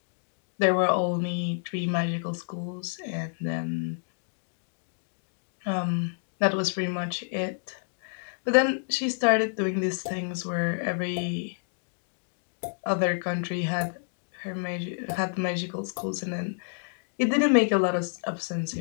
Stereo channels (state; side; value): silent; right; 59 dB below the other